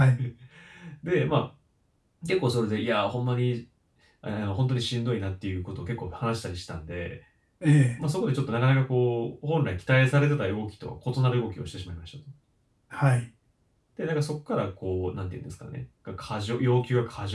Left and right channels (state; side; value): identical; both; correlation 1.00